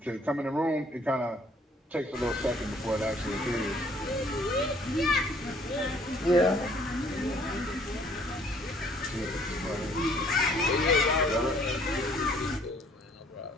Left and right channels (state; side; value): normal; both; correlation 0.60